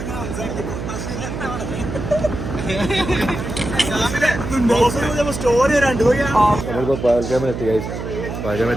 സ്റ്റോറി വരാണ്ട് നമ്മളിപ്പോൾ പകൽഗാമിലെത്തി ഗൈസ്.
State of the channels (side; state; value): right; noise; hum, 6 dB below the sound